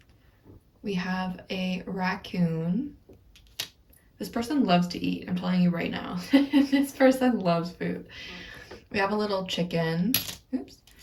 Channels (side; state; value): both; identical; correlation 1.00